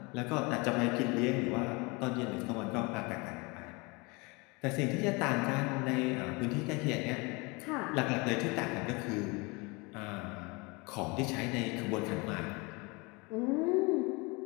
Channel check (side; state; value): right; quieter; 27.5 dB